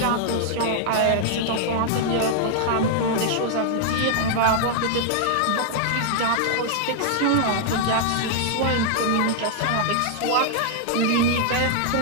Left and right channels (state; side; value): different; both; correlation 0.00